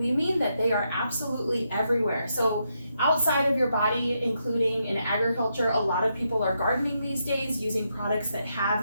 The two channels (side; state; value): both; inverted; correlation -0.81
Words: we mean that they are absolutely everywhere. So outside of your body, including in agriculture, a lot of people are gardening these days using products that